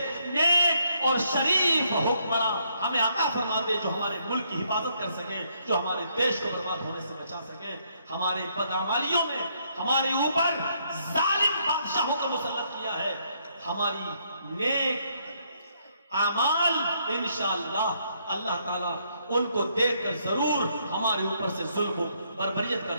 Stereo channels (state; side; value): inverted; both; correlation -0.73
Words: نیک اور شریف حکمراں ہمیں عطا فرما دے، جو ہمارے ملک کی حفاظت کر سکے، جو ہمارے دیش کو برباد ہونے سے بچا سکے۔ ہمارے بدعمالیوں میں ہمارے اوپر ظالم بادشاہوں کو مسلط کیا ہے، ہماری نیک اعمال انشاءاللہ اللہ تعالیٰ ان کو دیکھ کر ضرور ہمارے اوپر سے ظلم و بربریت کا